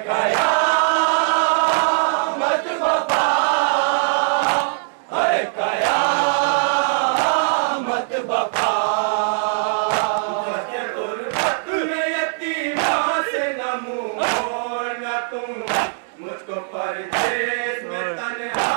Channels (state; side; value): silent; left; digital silence